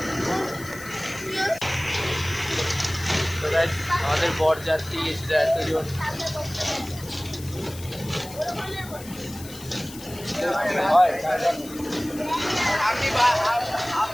আমাদের বরযাত্রী এসেছে এতজন आपकी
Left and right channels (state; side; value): noise; left; hiss, 16 dB below the sound